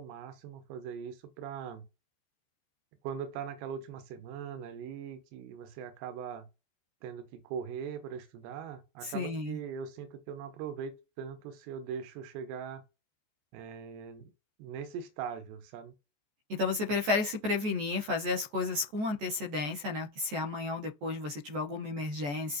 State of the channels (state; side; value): late; left; 14 ms